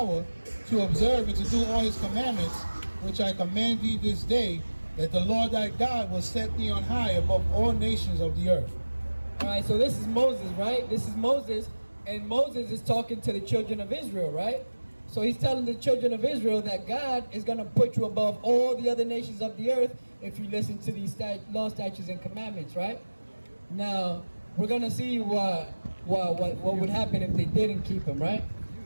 to observe and to do all his commandments, which I command thee this day, that the Lord thy God will set thee on high above all nations of the earth. All right, so this is Moses, right? This is Moses, and Moses is talking to the children of Israel, right? So he's telling the children of Israel that God is going to put you above all the other nations of the earth if you listen to these law, statutes, and commandments, right? Now, we're going to see what would happen if they didn't keep them, right?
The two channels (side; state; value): both; inverted; correlation -1.00